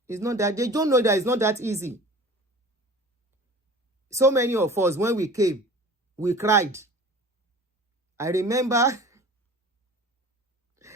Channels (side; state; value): both; normal; correlation 0.42